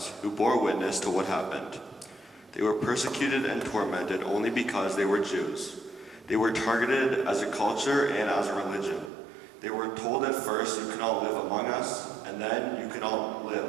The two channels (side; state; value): left; drops out; at 9.1 s